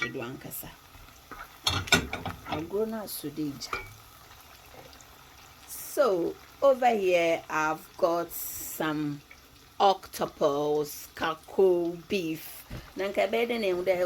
ankasa. I'll grow now sudija. So over here I've got some octopus, kako, beef. Nanka beden and the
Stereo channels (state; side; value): identical; both; correlation 1.00